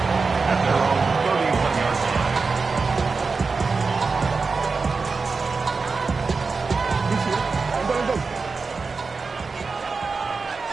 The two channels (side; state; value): left; quieter; 4.5 dB